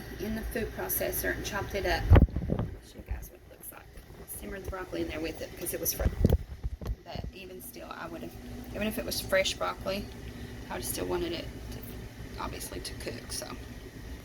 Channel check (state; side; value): identical; both; correlation 1.00